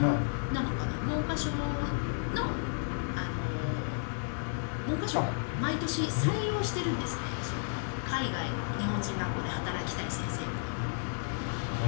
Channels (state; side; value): silent; right; digital silence